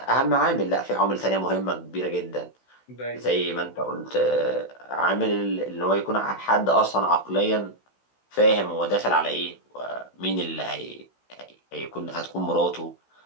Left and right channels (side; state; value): right; late; 16 ms